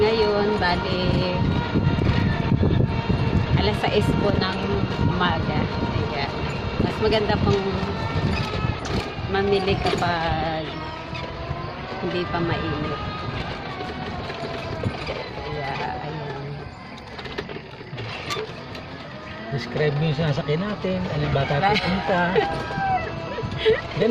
Bali alas 6 po ng umaga. Kaya mas maganda pong mamili kapag hindi pa mainit. Kaya ayun. Describe mo yung sinasakyan natin, alin ba tayo pupunta.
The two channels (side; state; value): both; identical; correlation 1.00